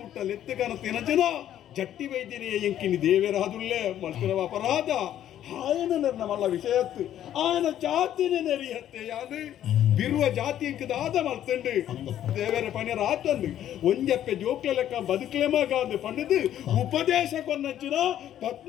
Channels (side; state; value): right; quieter; 11.3 dB